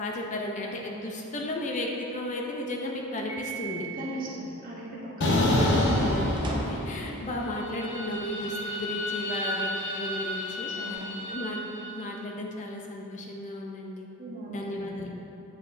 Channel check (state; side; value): normal; both; correlation 0.39